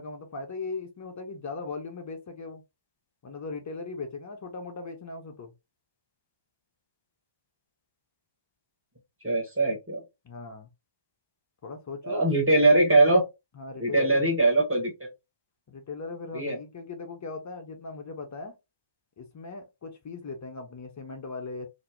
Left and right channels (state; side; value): inverted; both; correlation -0.72